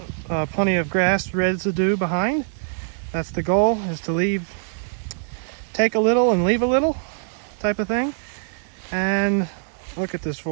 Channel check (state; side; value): silent; left; digital silence